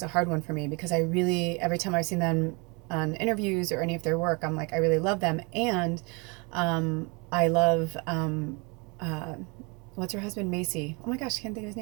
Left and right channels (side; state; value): left; quieter; 30.2 dB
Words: a hard one for me, because every time I've seen them on interviews or any of their work, I'm like, I really love them. And I love what's her husband, Macy? Oh my gosh, I can't think of his